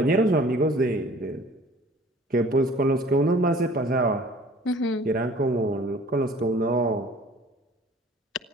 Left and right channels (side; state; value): both; normal; correlation 0.50